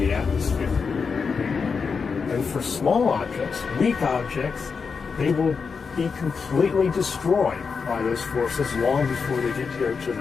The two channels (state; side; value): quieter; right; 5.4 dB